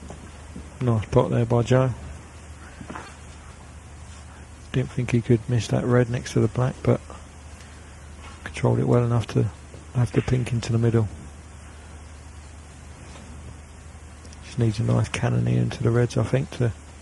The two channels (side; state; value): both; identical; correlation 1.00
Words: nice pot there by Joe. Didn't think he could miss that red next to the black, but controlled it well enough to have the pink into the middle. Just needs a nice cannoneer into the reds, I think, to...